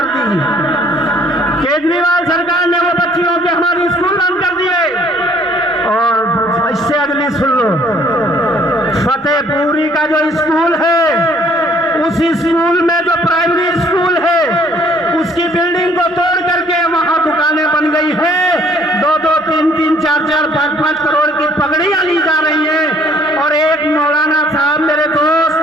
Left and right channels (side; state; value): both; normal; correlation 0.61